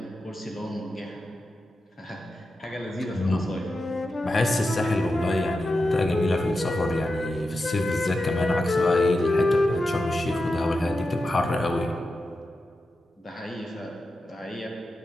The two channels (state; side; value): normal; both; correlation 0.90